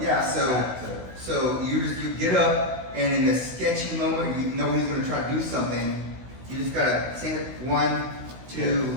Yeah, back to, so you get up, and in the sketchy moment, you know he's gonna try to do something. You just gotta say it 1, 2,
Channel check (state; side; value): late; left; 16 ms